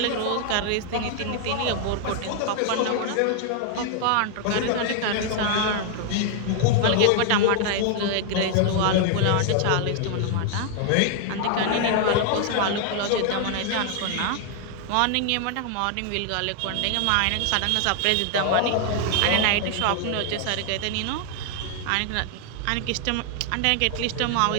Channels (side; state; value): both; different; correlation 0.00